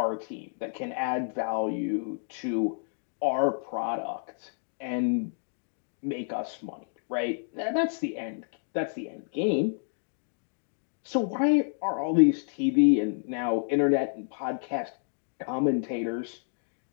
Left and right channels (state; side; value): silent; right; digital silence